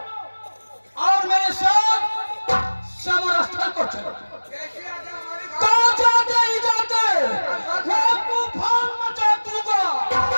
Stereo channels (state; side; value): inverted; both; correlation -1.00